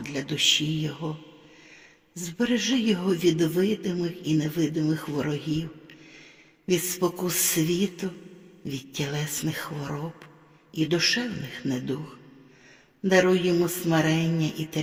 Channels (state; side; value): identical; both; correlation 1.00